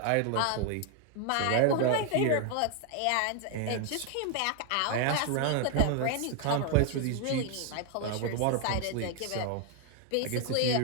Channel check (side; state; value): both; different; correlation 0.00